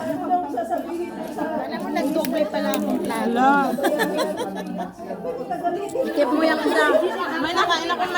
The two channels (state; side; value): identical; both; correlation 1.00